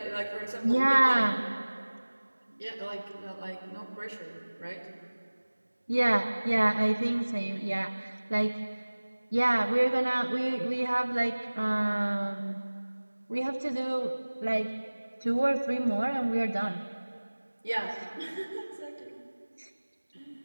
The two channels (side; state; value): both; inverted; correlation -1.00